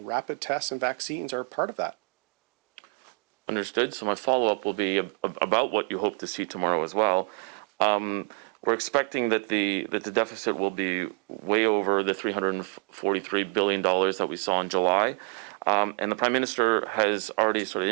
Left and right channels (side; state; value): left; quieter; 38.2 dB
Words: tests and vaccines are part of that. Understood. So my follow-up will be about what you hope to see tomorrow as well. We're expecting that the deficit will be way over the $343 billion that we saw in July. And the Prime Minister has already sort of